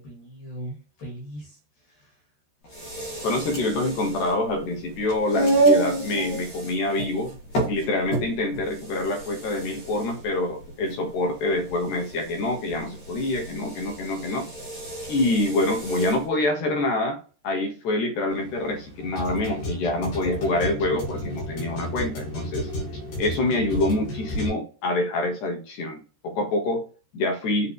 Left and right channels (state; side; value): late; right; 13 ms